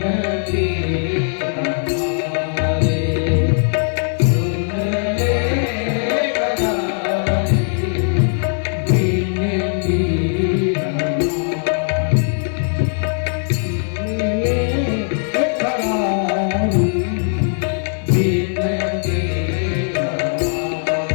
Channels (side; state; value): right; silent; 65 dB below the other